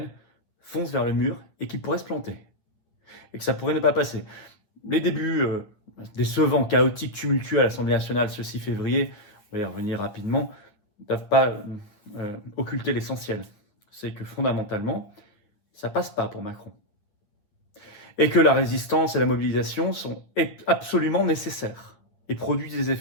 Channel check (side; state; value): right; late; 9.3 ms